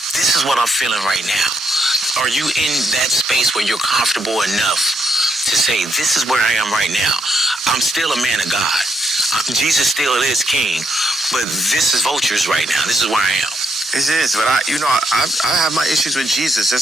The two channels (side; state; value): both; normal; correlation 0.77